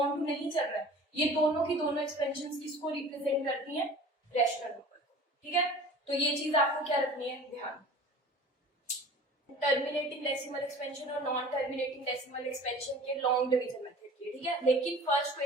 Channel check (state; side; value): normal; both; correlation 0.43